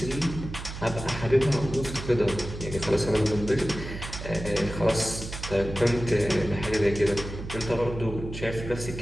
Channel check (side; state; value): right; noise; hum, 9 dB below the sound